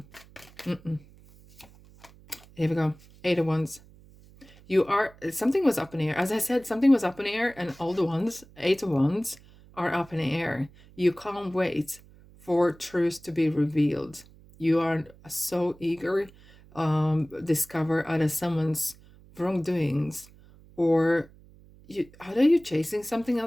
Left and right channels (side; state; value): right; noise; hum, 24 dB below the sound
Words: Here we go. Eight of Wands. Something was up in the air. As I said, something was up in the air, and all the ones, Eight of Wands, are up in the air. You can't wait for truth to be revealed. You are so eager discover either someone's wrongdoings, or are you chasing something